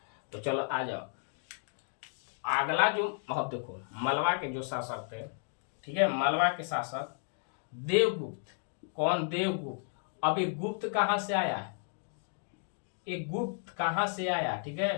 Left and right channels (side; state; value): right; silent; 56 dB below the other